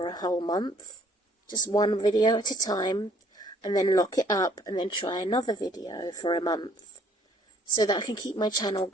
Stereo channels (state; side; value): normal; both; correlation 0.60